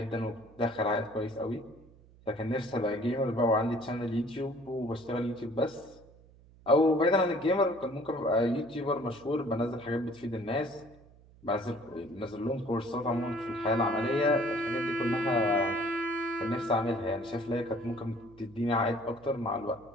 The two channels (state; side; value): noise; right; hum, 25 dB below the sound